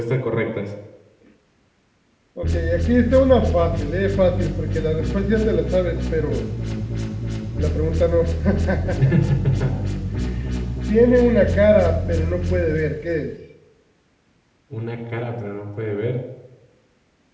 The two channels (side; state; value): both; identical; correlation 1.00